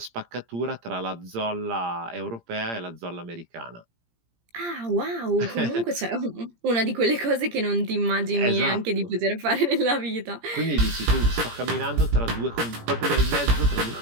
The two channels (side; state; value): left; late; 17 ms